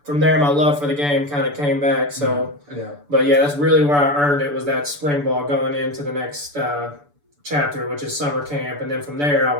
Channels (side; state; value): left; late; 6.9 ms